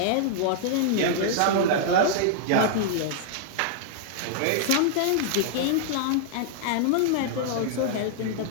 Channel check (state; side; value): different; both; correlation -0.01